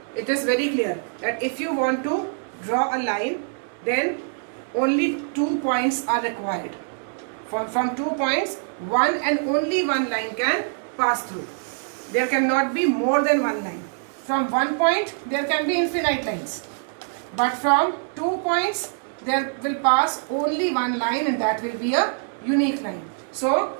It is very clear that if you want to draw a line, then only 2 points are required. From 2 points, one and only one line can pass through. There cannot be more than one line. From one point there can be infinite lines, but from 2 points there will pass only one line, and that will be a unique line. So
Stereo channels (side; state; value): left; silent; digital silence